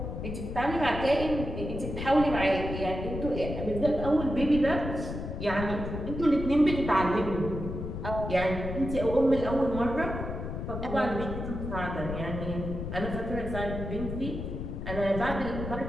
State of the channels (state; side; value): noise; left; rumble, 6 dB below the sound